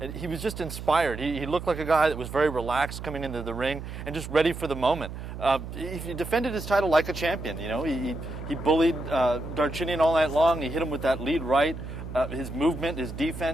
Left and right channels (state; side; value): noise; right; hum, 9 dB below the sound